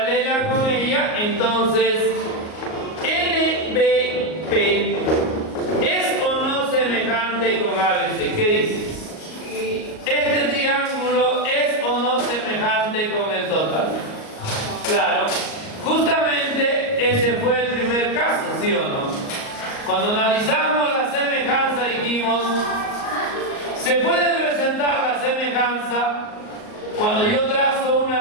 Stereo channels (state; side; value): late; right; 38 ms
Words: con ella, entonces NBP ¿es o no semejante con ABC? ¿Qué dices? ¿Este triángulo es o no semejante con el total? Claro, justamente ese fue el primer caso, ¿sí o no? Cuando analizamos la semejanza dijimos, se puede presentar la semejanza cuando yo trazo una